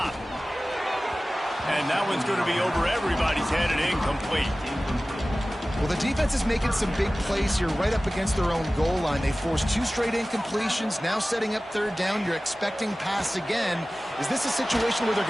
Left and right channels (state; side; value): normal; both; correlation 0.97